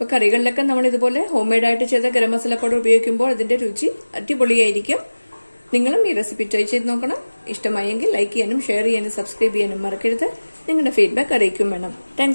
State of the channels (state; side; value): inverted; both; correlation -1.00